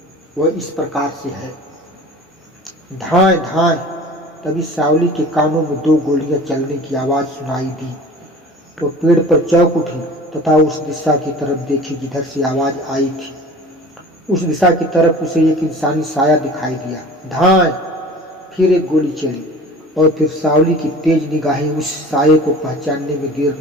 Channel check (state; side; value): normal; both; correlation 0.42